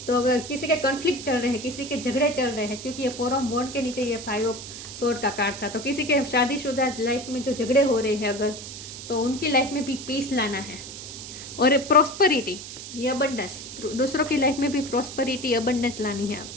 तो अगर किसी के कॉन्फ्लिक्ट चल रहे हैं, किसी के झगड़े चल रहे हैं, क्योंकि ये 4 ऑफ वॉन्ड के नीचे ये 5 ऑफ सोर्ड का कार्ड था, तो किसी के शादीशुदा लाइफ में जो झगड़े हो रहे हैं अगर, तो उनकी लाइफ में भी पीस लाना है। और प्रॉस्पेरिटी, ये अबंडेंस, दूसरों की लाइफ में भी प्रॉस्पेरिटी अबंडेंस लानी है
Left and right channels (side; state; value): right; noise; hiss, 11 dB below the sound